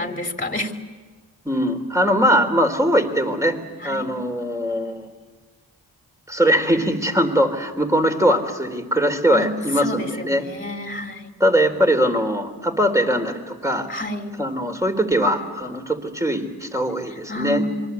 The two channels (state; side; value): normal; both; correlation 0.58